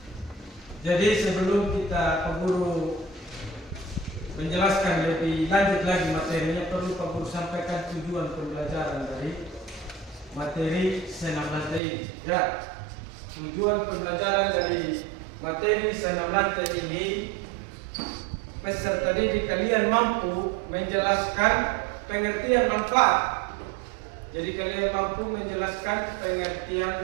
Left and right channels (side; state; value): left; drops out; at 11.8 s